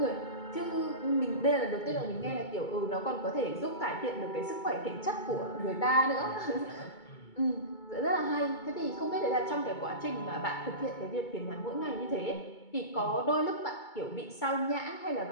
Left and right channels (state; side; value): late; right; 2.2 ms